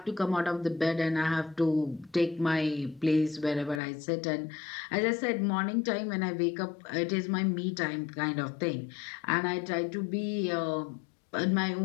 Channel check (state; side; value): drops out; right; at 3.8 s